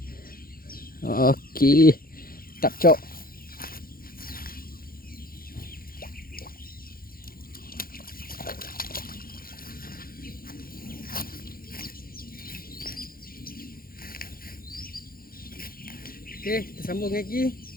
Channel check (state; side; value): late; right; 0.42 ms